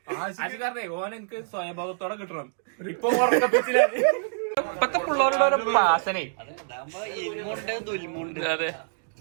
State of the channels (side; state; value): left; silent; digital silence